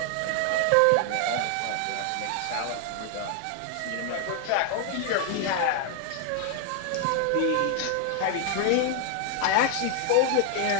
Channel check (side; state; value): both; different; correlation 0.00